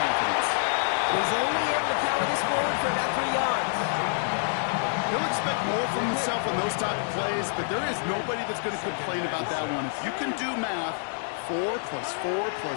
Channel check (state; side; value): silent; right; digital silence